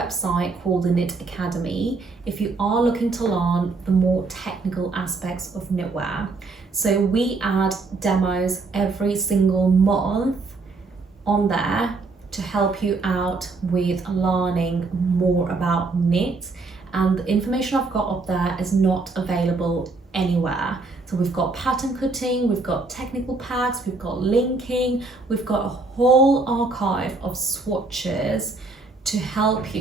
called the Knit Academy if you are looking to learn the more technical aspects of knitwear. So we add demos every single month on there to help you out with learning more about knit, and the information I've got up there is not available anywhere. So we've got pattern cutting, we've got technical packs, we've got linking, we've got a whole archive of swatches to help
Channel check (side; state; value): left; quieter; 3.8 dB